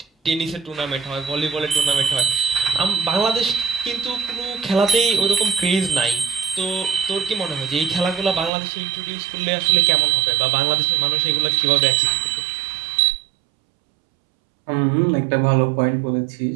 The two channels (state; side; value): drops out; left; at 8.5 s